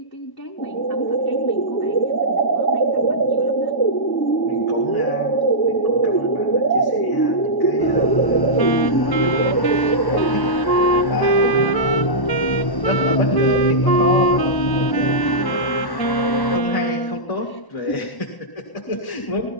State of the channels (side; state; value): right; late; 1.1 ms